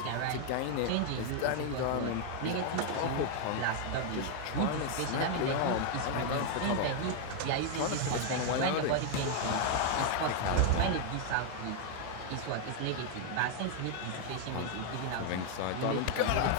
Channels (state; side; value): different; both; correlation 0.00